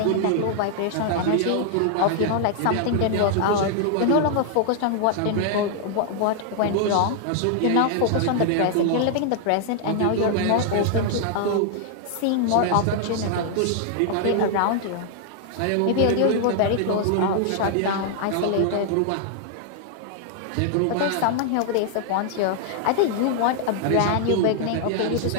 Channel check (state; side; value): different; both; correlation 0.00